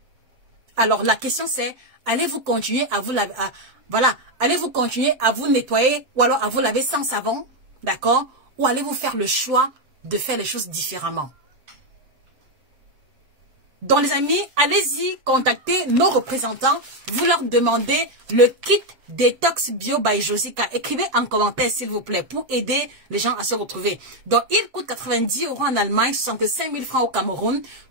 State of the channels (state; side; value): late; left; 7.7 ms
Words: Alors, la question c'est, allez-vous continuer à vous laver, allez-vous continuer à vous nettoyer ou alors à vous laver sans savon, d'accord? Ou allez-vous faire le choix de faire les choses différemment? Donc les amis, allez-y, contactez nos représentants, vous leur demandez le kit Détox Bio by Josica. Écrivez en commentaire s'il vous plaît pour aider les gens à se retrouver. Donc il coûte 90 € en Allemagne, 65 000 francs au Cameroun.